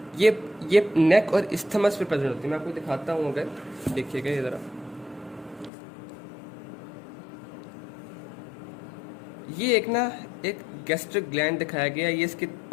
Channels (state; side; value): drops out; right; at 5.7 s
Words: ये नेक और इस्थमस पे प्रेजेंट होती है। मैं आपको दिखाता हूँ, अगर देखिएगा ये ज़रा, ये एक गैस्ट्रिक ग्लैंड दिखाया गया है, ये इसके